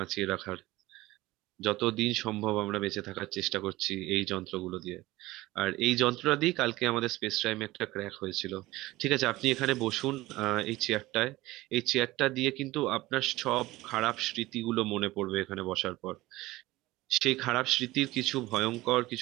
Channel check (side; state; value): left; quieter; 18.5 dB